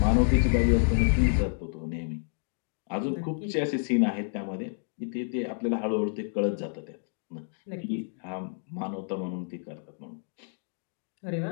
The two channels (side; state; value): right; silent; digital silence